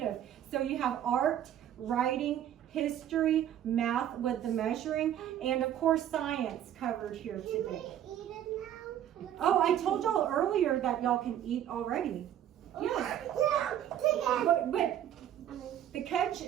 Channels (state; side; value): quieter; left; 10.9 dB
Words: so you have art, writing, history, math with the measuring, and of course science covered here Can we today. eat it now? Oh, I told y'all earlier that y'all can eat already. Yeah. Yeah, take it. But the catch